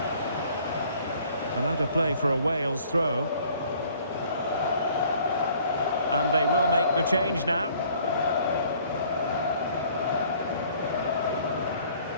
And out of play for a Wales throw. And they will make the change now.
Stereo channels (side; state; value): both; inverted; correlation -0.57